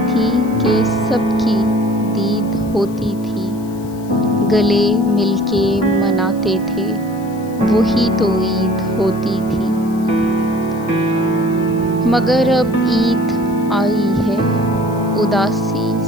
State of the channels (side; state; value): left; noise; hiss, 24 dB below the sound